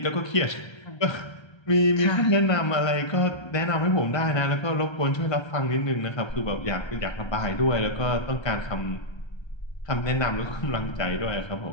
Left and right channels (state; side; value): late; right; 1.3 ms